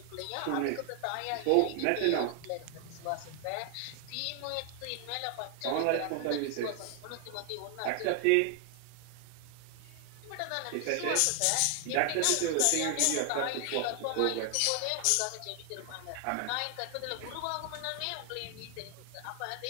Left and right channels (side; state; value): both; different; correlation 0.00